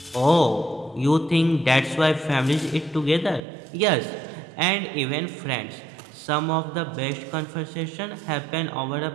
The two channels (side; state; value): left; drops out; at 3.4 s